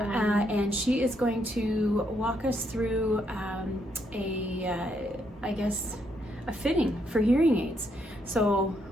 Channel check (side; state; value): both; normal; correlation 0.75